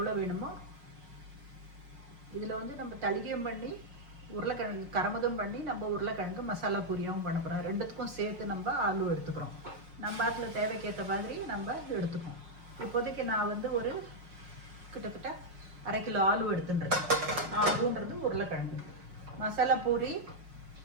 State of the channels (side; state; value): left; late; 5.6 ms